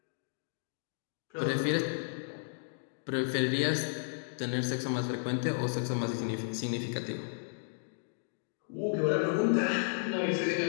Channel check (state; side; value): silent; right; digital silence